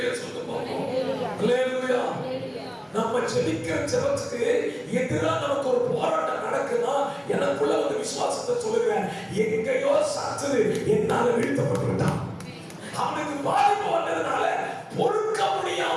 சொல்லுங்க பாப்போம். அல்லேலூயா. நம்ம ஜெபிக்கிற ஜெபத்துக்கு எதிரா நமக்கு ஒரு போராட்டம் நடக்குன்னா எனக்குள்ள ஒரு விசுவாசத்தை சொல்லுகிறேன், எங்கேயோ சத்துரு என்னால வீழ்த்தப்பட்டு விட்டான். அவனுக்கு பாதிப்பு வந்ததுனால பொறுக்க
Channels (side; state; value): both; identical; correlation 1.00